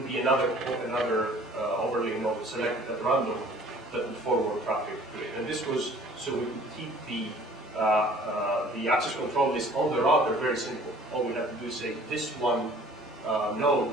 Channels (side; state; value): both; normal; correlation 0.52